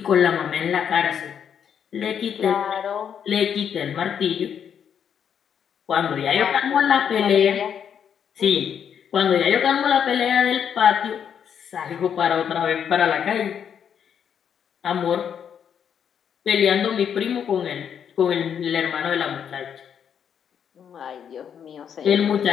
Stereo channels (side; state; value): right; quieter; 8.1 dB